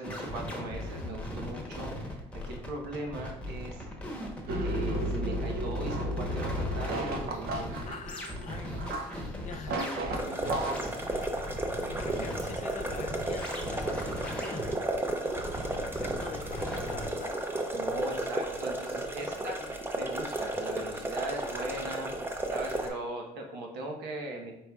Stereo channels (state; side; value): normal; both; correlation 0.53